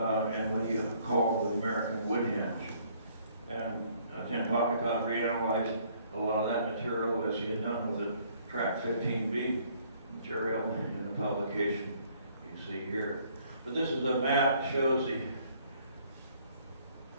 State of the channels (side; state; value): both; inverted; correlation -0.62